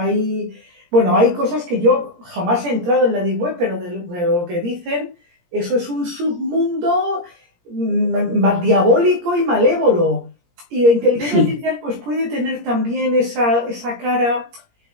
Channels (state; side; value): late; left; 17 ms